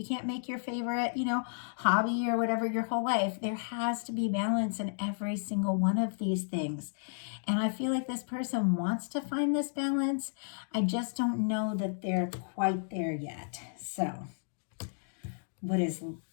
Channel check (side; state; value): right; silent; digital silence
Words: can't make your favorite, hobby or whatever your whole life. There has to be balance in every single one of these things. And I feel like this person wants to find this balance. I just don't know that they're quite there yet. So, what is